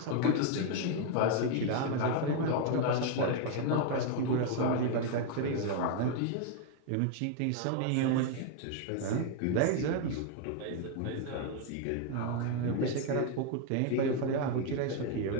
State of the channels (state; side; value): different; both; correlation 0.01